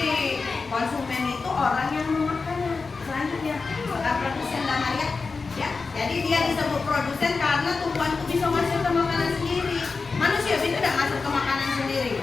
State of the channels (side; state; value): right; quieter; 4.4 dB